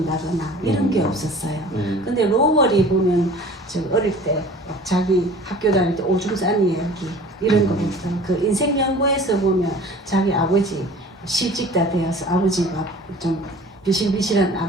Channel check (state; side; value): normal; both; correlation 0.45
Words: 이런 게 없었어요. 근데 로월이 보면 저 어릴 때 자기 학교 다닐 때 오줌 싼 이야기 이런 거부터 그 인생 연구에서 보면 자기 아버지 실직 다 되어서 아버지가 좀 비실비실한